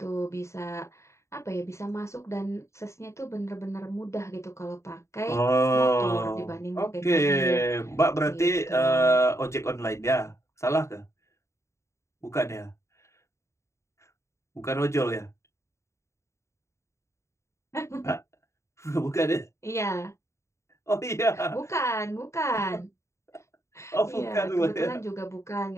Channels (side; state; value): right; late; 0.14 ms